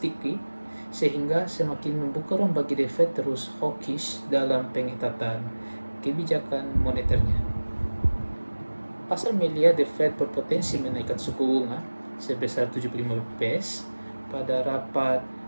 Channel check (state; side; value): inverted; both; correlation -1.00